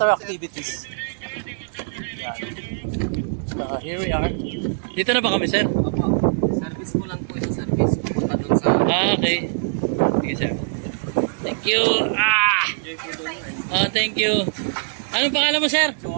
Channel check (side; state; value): left; silent; digital silence